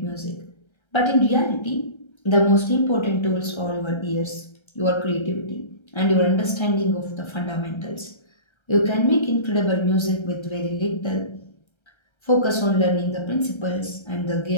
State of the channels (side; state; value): right; late; 1.3 ms